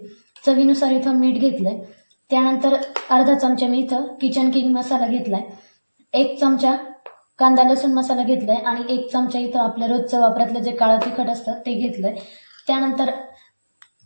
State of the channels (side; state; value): both; inverted; correlation -1.00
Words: चवीनुसार इथं मीठ घेतलंय. त्यानंतर अर्धा चमचा मी इथं किचन किंग मसाला घेतलाय. 1 चमचा कांदा लसूण मसाला घेतलाय आणि 1 चमचा इथं आपलं रोजचं वापरातलं जे काळं तिखट असतं ते घेतलंय. त्यानंतर